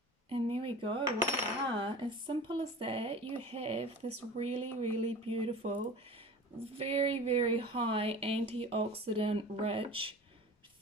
And there we go, voila. As simple as that, you have this really, really beautiful, very, very high antioxidant rich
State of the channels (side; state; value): both; normal; correlation 0.37